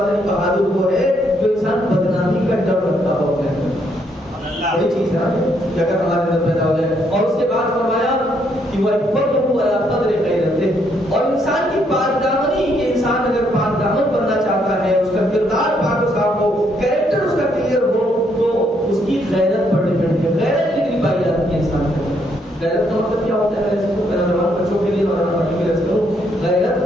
ہیں بہادر وہ ہے جو انسان بدنامی کا ڈر رکھتا ہو اپنے اندر. وہی چیز ہے کہ اگر ہمارے اندر پیدا ہو جائے. اور اس کے بعد فرمایا کہ وہ فضلہ علی قدر غیرتہ, اور انسان کی پاک دامنی, کہ انسان اگر پاک دامن بننا چاہتا ہے, اس کا کردار پاک و صاف ہو, کریکٹر اس کا کلیئر ہو, تو اس کی غیرت پر ڈیپینڈ ہے. غیرت کتنی پائی جاتی ہے انسان کو. غیرت کا مطلب کیا ہوتا ہے, اس کو میرا جوان بچوں کے لیے مولانا پرٹیکولر کروں, غیرت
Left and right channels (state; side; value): normal; both; correlation 0.72